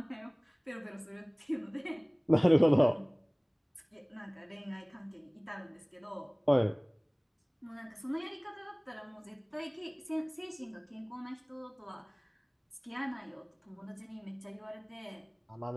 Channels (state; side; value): identical; both; correlation 1.00